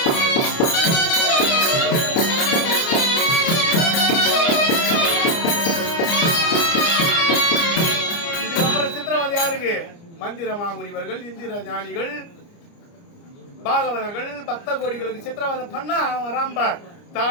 மந்திர மாமுனிவர்கள், இந்திர ஞானிகள், பாகவதர்கள், பக்த கோடிகளுக்கு சித்திரவாதம் பண்ண அவன் ராம்பார்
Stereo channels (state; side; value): late; right; 29 ms